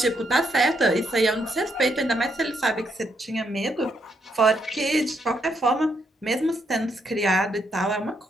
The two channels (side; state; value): both; normal; correlation 0.76